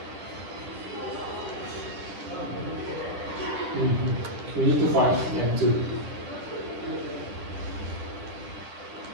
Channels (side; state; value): left; late; 10 ms